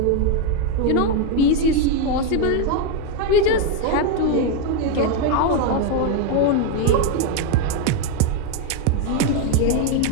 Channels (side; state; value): both; different; correlation 0.01